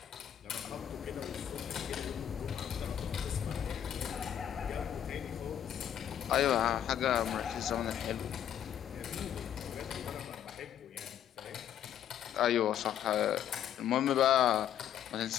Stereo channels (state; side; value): quieter; right; 10.1 dB